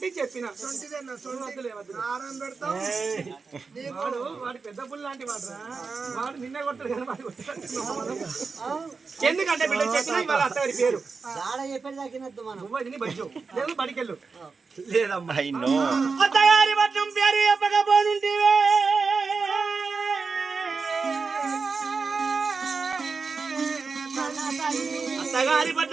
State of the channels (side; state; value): left; quieter; 4.7 dB